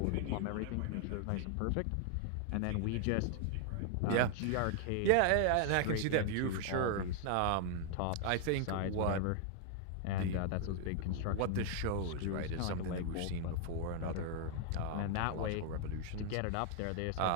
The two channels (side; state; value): both; different; correlation 0.00